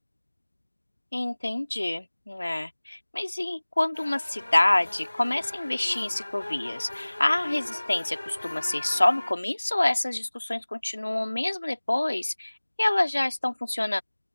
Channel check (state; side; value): inverted; both; correlation -1.00